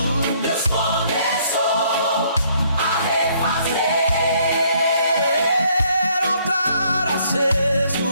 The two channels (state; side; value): inverted; both; correlation -0.66